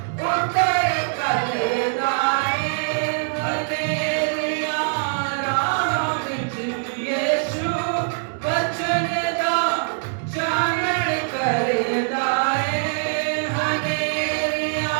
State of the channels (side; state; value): left; silent; digital silence